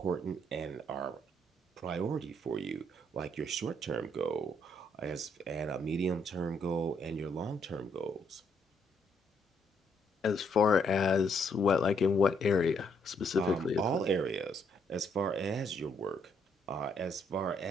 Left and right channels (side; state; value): both; normal; correlation 0.72